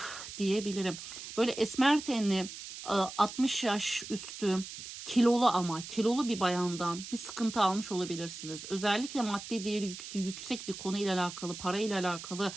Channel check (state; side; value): noise; right; hiss, 11 dB below the sound